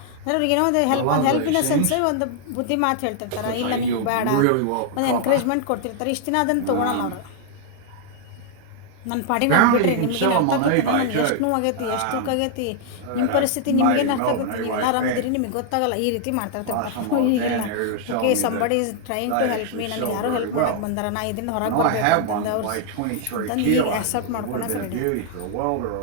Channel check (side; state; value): both; different; correlation 0.00